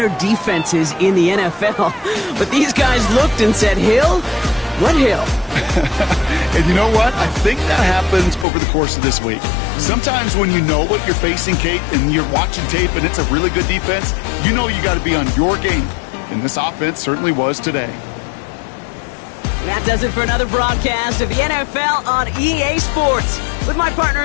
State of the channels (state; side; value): drops out; right; at 8.5 s